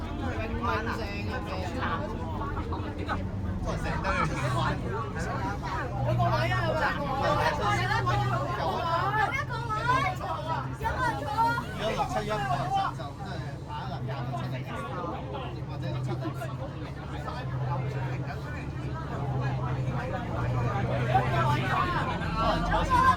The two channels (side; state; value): both; identical; correlation 1.00